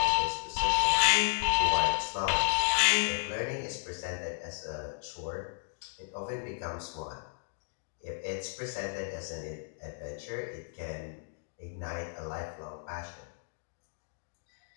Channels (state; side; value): silent; right; 56 dB below the other